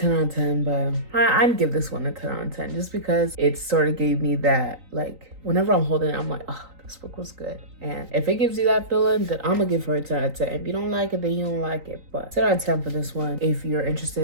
out of 10, but I'd give this one a 10 out of 10 just because it sort of gave me that, like, whenever I'm holding it, I'm like, oh, this book was good. And if it gives you that feeling, then I'm gonna give her a 10 out of 10. If you don't like it, then you don't like it. But 10 out of 10 for this one. If you're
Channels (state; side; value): late; left; 3.9 ms